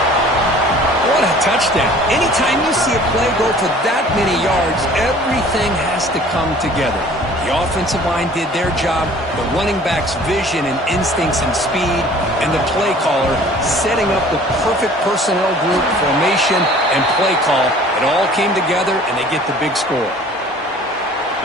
What a touchdown. Anytime you see a play go for that many yards, everything has to come together. The offensive line did their job, the running back's vision and instincts and speed, and the play caller setting up the perfect personnel group, formation, and play call. It all came together, and they get the big score.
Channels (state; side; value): normal; both; correlation 0.50